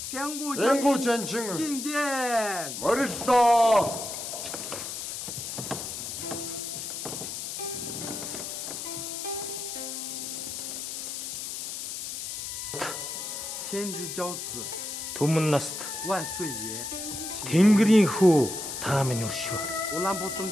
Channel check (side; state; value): left; noise; hiss, 6 dB below the sound